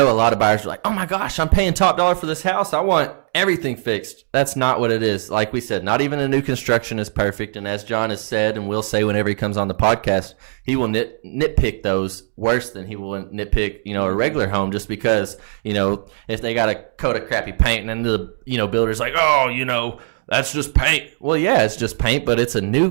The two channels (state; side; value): silent; left; digital silence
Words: a lot of buyers are like, oh my gosh, I'm paying top dollar for this house. I want everything fixed. That's not what it is. Like we said, not even a new construction is perfect. And as John has said, and will say whenever he comes on the podcast, he will nitpick those worse than he will nitpick, a regular home, just because, if they got a coat of crappy paint and then the, builder's like, oh, that's just paint. Well, yeah, it's just paint, but it's a new